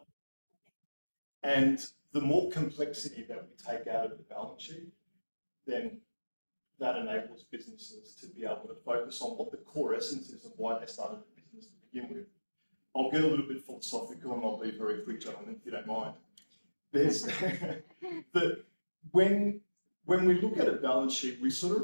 And the more complexity that we take out of the balance sheet, then that enables businesses to be able to focus on what the core essence is of why they started the business to begin with. I'll get a little bit philosophical and I'll be very quick, gentlemen, if you don't mind. There's that when we look at a balance sheet, we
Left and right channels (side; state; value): both; inverted; correlation -1.00